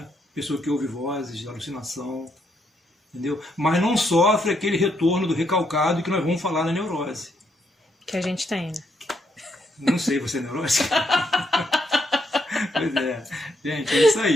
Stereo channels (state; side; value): normal; both; correlation 0.76